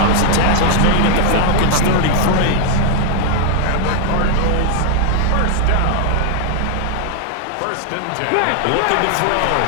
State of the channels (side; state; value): both; different; correlation 0.00